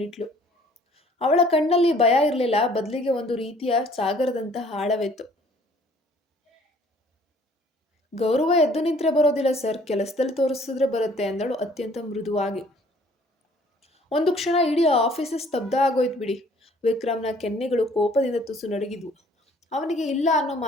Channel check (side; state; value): both; normal; correlation 0.56